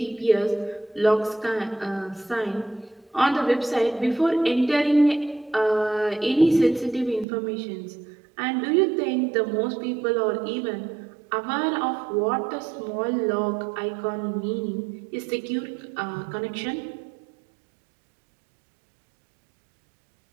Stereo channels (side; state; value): left; drops out; at 7.2 s